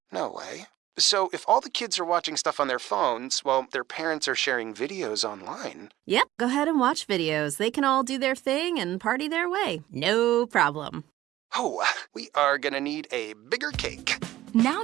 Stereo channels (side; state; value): left; quieter; 14.8 dB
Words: No way. So if all the kids are watching stuff on their phones, well, their parents are sharing videos online. Yep, go ahead and watch videos. They can all do their thing and party their way. No problem. Oh, we are gonna need a bigger cake. Now